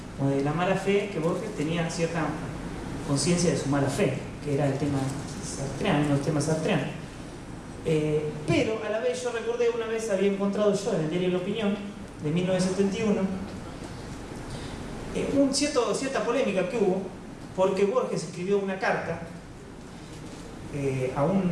como de la mala fe, que Borges tenía cierta conciencia de su mala fe, que era el tema sartreano, uno de los temas sartreanos. Pero a la vez yo recordé, una vez había encontrado yo en el diario La Opinión de 1971 cierta polémica que hubo porque Borges escribió una carta a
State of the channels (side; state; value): both; identical; correlation 1.00